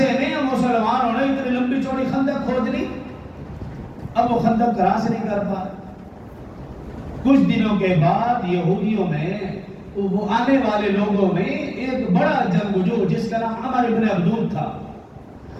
میں مسلمانوں نے اتنی لمبی چوڑی خندق کھود لی. اب وہ خندق کراس نہیں کر پا. کچھ دنوں کے بعد یہودیوں میں وہ آنے والے لوگوں میں ایک بڑا جنگجو جس کا نام عمر ابن عبدود تھا.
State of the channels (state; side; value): identical; both; correlation 1.00